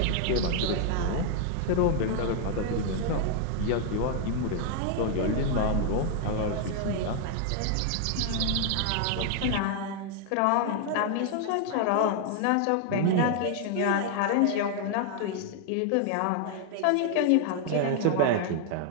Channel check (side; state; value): both; different; correlation 0.00